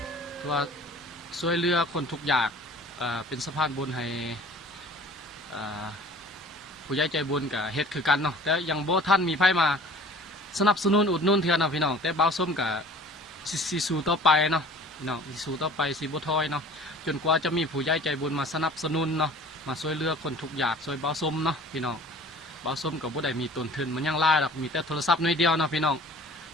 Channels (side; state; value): both; normal; correlation 0.46